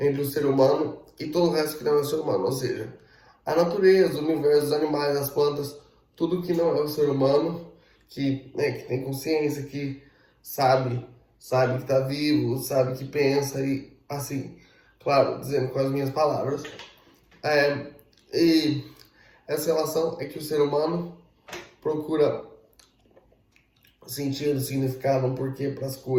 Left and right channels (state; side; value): identical; both; correlation 1.00